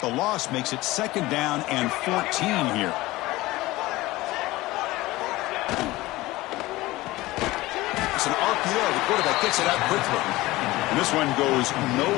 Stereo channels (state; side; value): quieter; right; 19.0 dB